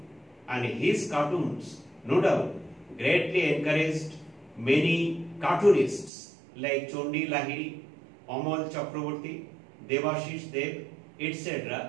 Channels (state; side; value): drops out; left; at 6.1 s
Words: and his cartoons, no doubt, greatly encouraged many cartoonists like Chondi Lahiri, Amal Chakraborty, Devashish Dev,